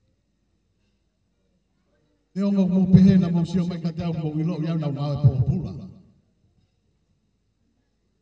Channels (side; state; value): both; identical; correlation 1.00